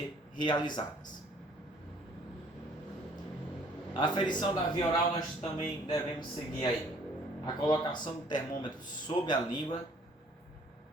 realizadas. A aferição da via oral nós também devemos seguir aí a colocação do termômetro sob a língua,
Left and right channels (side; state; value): both; normal; correlation 0.58